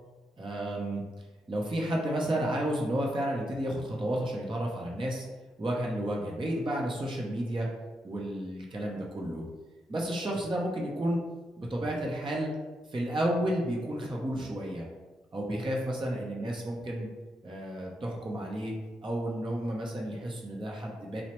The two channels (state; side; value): normal; both; correlation 0.84